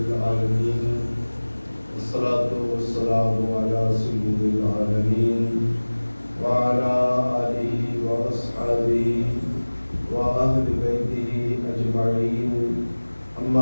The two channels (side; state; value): both; inverted; correlation -1.00